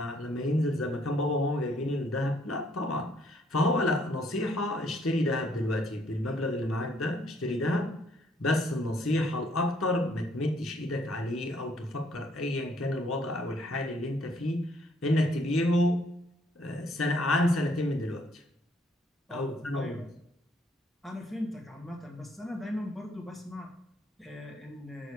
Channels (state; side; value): normal; both; correlation 0.66